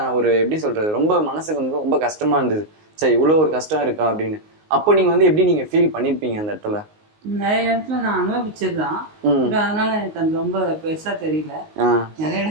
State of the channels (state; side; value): late; left; 19 ms